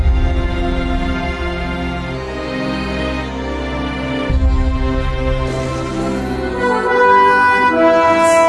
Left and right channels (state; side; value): identical; both; correlation 1.00